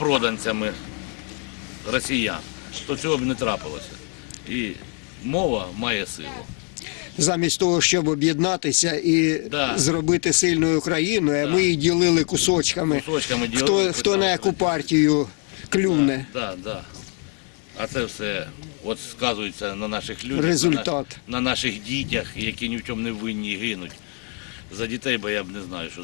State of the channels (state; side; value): quieter; right; 38.5 dB